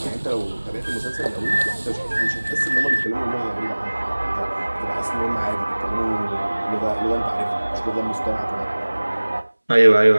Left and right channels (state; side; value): inverted; both; correlation -1.00